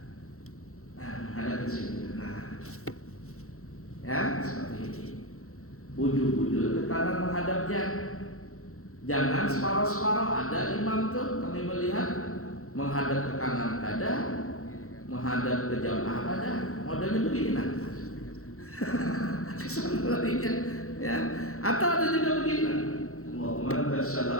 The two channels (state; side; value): late; right; 0.63 ms